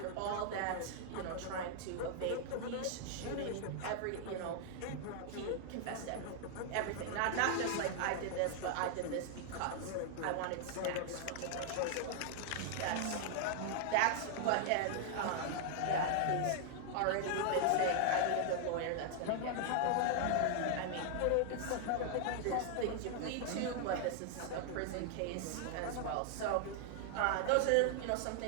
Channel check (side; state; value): both; different; correlation 0.00